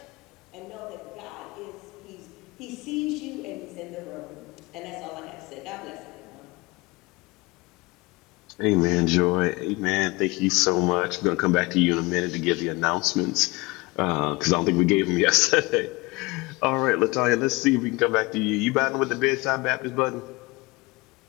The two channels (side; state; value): right; quieter; 23.8 dB